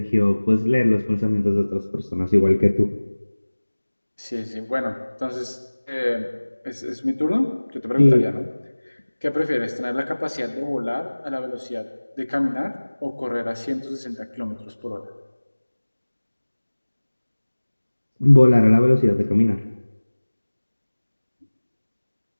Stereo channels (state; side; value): inverted; both; correlation -1.00